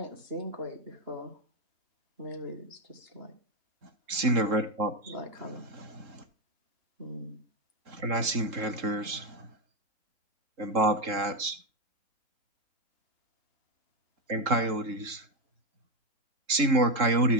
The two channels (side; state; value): left; late; 3.7 ms